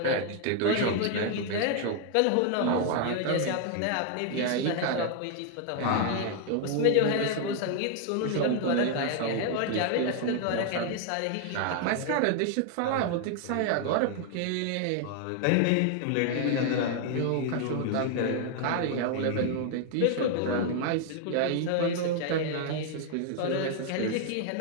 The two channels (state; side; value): different; both; correlation 0.00